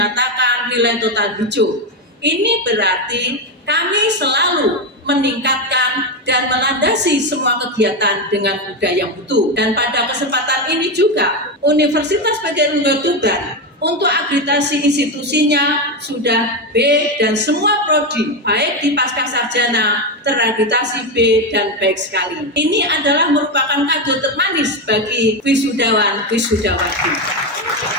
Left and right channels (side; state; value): both; normal; correlation 0.11